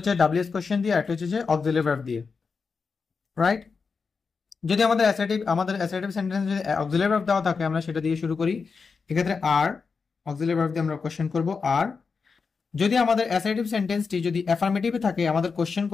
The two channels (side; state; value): right; quieter; 5.1 dB